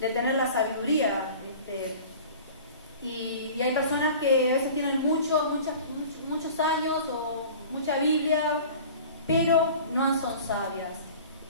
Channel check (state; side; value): inverted; both; correlation -0.42